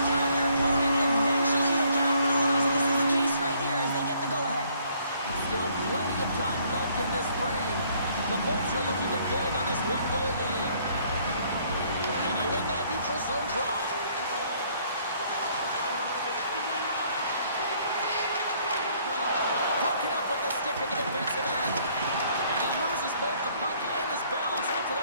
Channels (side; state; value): both; inverted; correlation -0.63